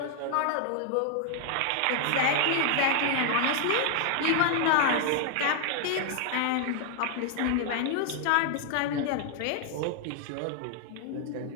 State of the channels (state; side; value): different; both; correlation 0.00